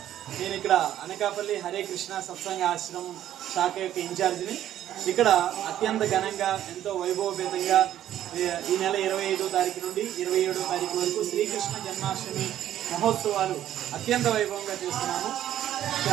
నేను ఇక్కడ అనకాపల్లి హరే కృష్ణ సత్సంగ ఆశ్రమం శాఖ యొక్క ఇన్ఛార్జిని. ఇక్కడ అత్యంత ఘనంగా ఎంతో వైభవపేతంగా ఈ నెల 25వ తారీఖు నుండి 27వ తారీఖు వరకు శ్రీకృష్ణ జన్మాష్టమి మహోత్సవాలు అత్యంత వైభవంగా చేస్తున్నాము.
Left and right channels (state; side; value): quieter; left; 11.8 dB